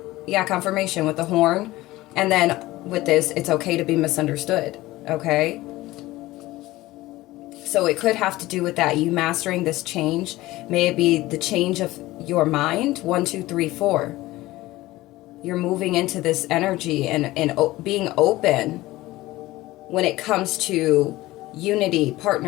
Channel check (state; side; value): quieter; right; 18.0 dB